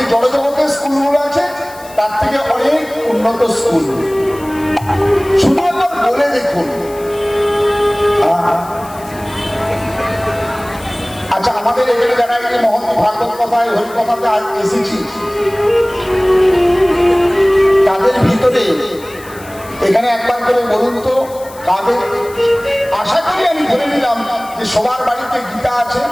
জড়জগতের স্কুলগুলো আছে, তার থেকে অনেক উন্নত স্কুল। শুধু একবার বলে দেখুন। আচ্ছা, আমাদের এখানে যারা এই মহৎ ভাগবত কথায় হরিকথাতে আজ এসেছি, তাদের ভিতরে এখানে একবার করে বলুন তো, কাদের? আশা করি আমি ধরে নিলাম যে সবার বাড়িতে গীতা আছে।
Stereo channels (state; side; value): noise; left; hiss, 20 dB below the sound